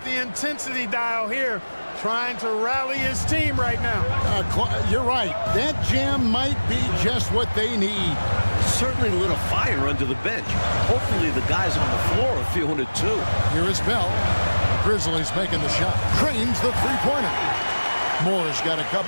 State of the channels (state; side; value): inverted; both; correlation -1.00